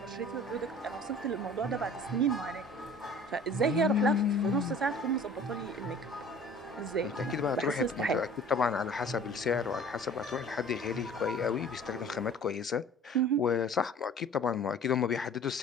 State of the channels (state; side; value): normal; both; correlation 0.47